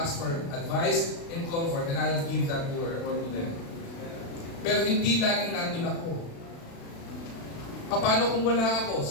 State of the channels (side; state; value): right; late; 36 ms